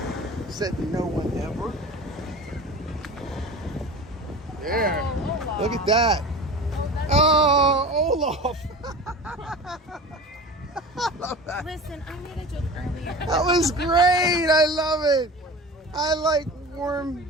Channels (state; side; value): normal; both; correlation 0.35